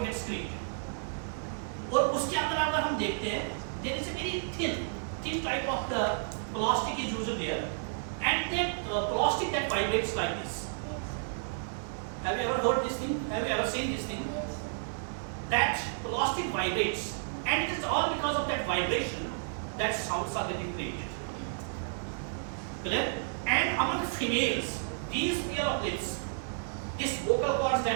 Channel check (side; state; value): left; silent; digital silence